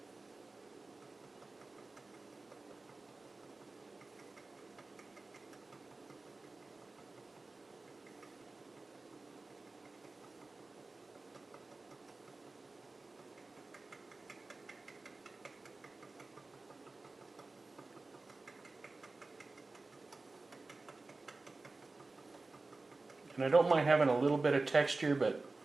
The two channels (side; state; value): left; quieter; 3.4 dB